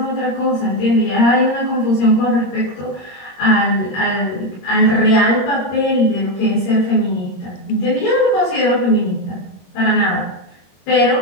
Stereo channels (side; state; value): right; late; 21 ms